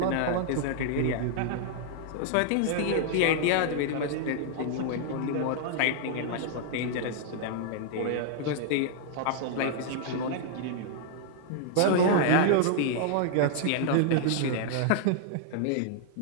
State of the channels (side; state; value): both; different; correlation 0.00